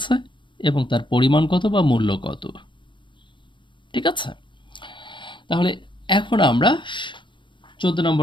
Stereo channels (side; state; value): right; late; 0.23 ms